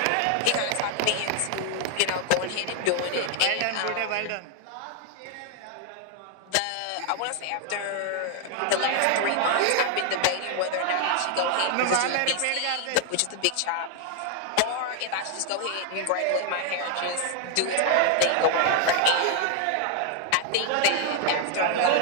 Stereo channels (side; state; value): both; different; correlation 0.00